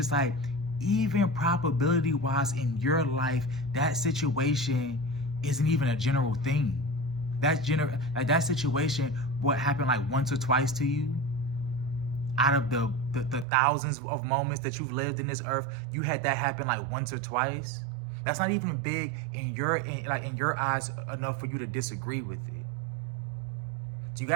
like, even probability wise in your life, that situation isn't even a general thing. That situation, what happened like once or twice to you, out of the thousands of moments that you've lived in this earth, you had that happen like once or twice. That's not even big in your eyes enough for you to disagree with it. So you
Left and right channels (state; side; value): drops out; left; at 13.5 s